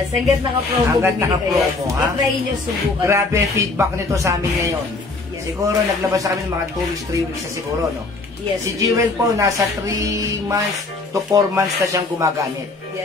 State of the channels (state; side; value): quieter; right; 3.5 dB